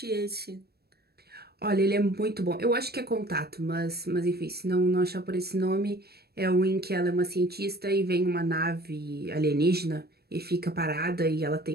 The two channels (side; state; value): left; late; 0.46 ms